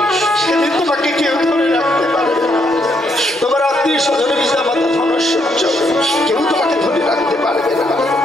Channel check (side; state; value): both; normal; correlation 0.74